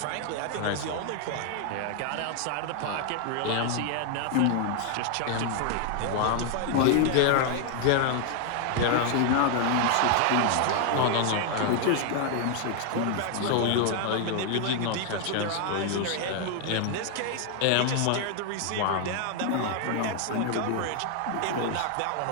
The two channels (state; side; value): different; both; correlation 0.00